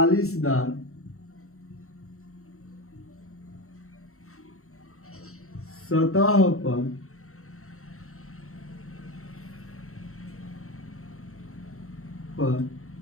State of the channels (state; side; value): late; right; 0.63 ms